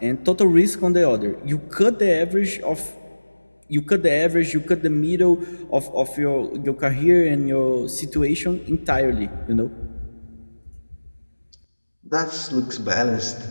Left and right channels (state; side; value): inverted; both; correlation -1.00